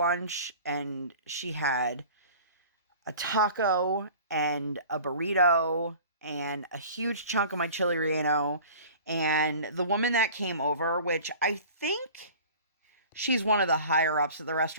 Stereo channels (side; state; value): both; inverted; correlation -0.43